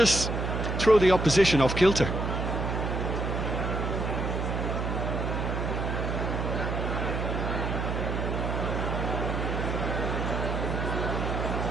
throw the opposition off kilter.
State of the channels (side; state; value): right; noise; hum, 1 dB below the sound